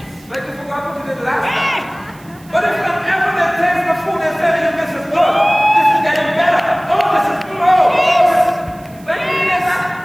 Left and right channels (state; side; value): noise; right; hiss, 27 dB below the sound